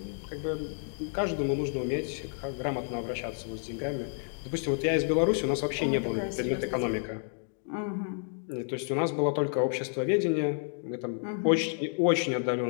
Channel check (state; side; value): silent; right; 56 dB below the other